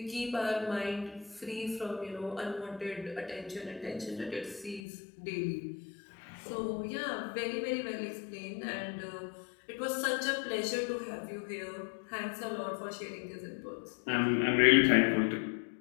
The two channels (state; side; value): drops out; right; at 4.8 s